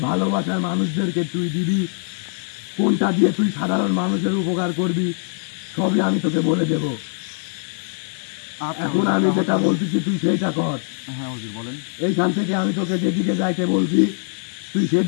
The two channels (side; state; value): right; silent; digital silence